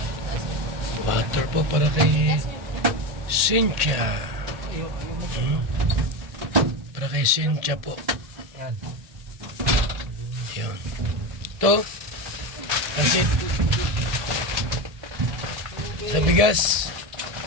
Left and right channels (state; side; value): late; left; 1.8 ms